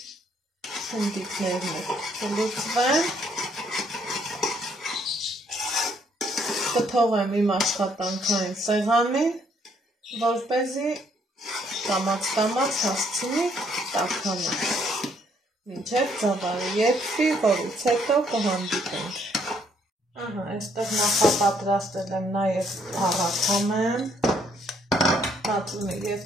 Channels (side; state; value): both; normal; correlation 0.68